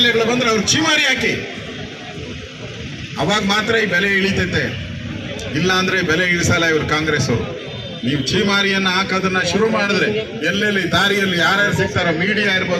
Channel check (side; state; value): both; identical; correlation 1.00